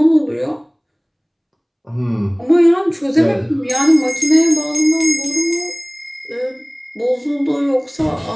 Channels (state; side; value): identical; both; correlation 1.00